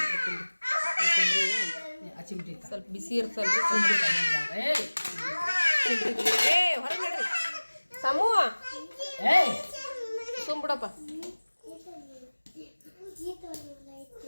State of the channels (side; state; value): both; inverted; correlation -1.00